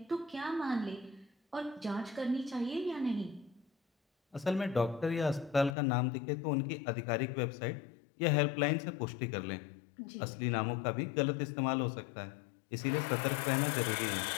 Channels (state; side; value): drops out; right; at 5.8 s